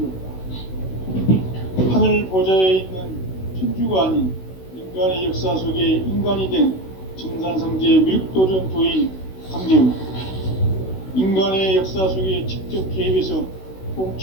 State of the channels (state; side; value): late; right; 16 ms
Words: 없다. 하늘 보좌에 있는 천주가 아닌 인간의 역사 속에 인간이 된 증산상제의 밀도전 도인 강제우, 인간의 역사 속에 직접 개입해서